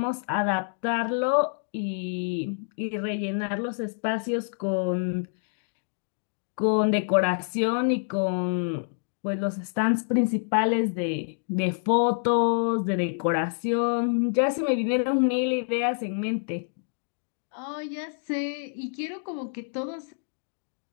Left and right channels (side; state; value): right; silent; digital silence